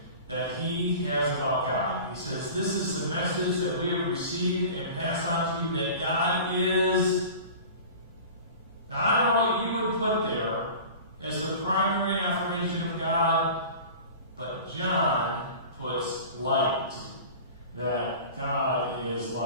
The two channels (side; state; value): both; inverted; correlation -0.39